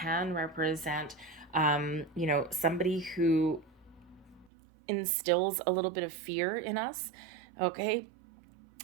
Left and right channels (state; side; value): drops out; left; at 4.5 s